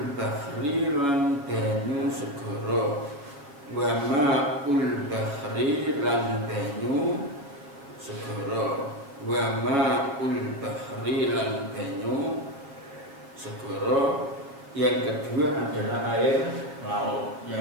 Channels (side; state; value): left; late; 7.0 ms